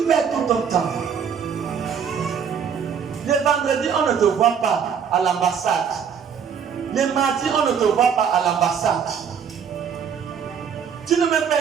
perds tout ton temps. Le vendredi, on ne te voit pas à l'ambassade. Le mardi, on ne te voit pas à l'ambassade. Tu n'es même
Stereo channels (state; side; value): quieter; left; 7.3 dB